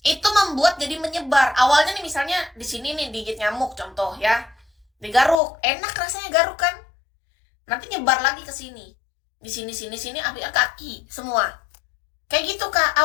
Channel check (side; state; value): right; drops out; at 5.4 s